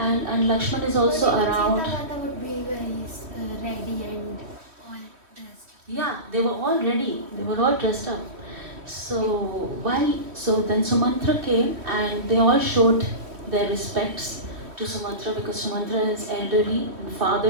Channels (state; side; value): late; left; 3.0 ms